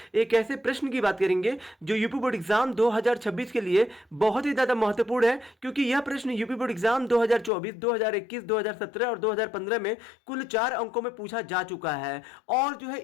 एक ऐसे प्रश्न की बात करेंगे जो यूपी बोर्ड एग्जाम 2026 के लिए बहुत ही ज़्यादा महत्वपूर्ण है, क्योंकि यह प्रश्न यूपी बोर्ड एग्जाम 2024, 2021, 2017 और 2015 में कुल 4 अंकों में पूछा जा चुका है। और जो है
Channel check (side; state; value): right; drops out; at 7.5 s